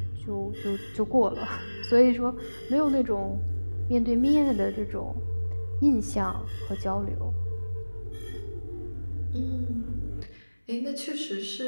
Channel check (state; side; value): inverted; both; correlation -1.00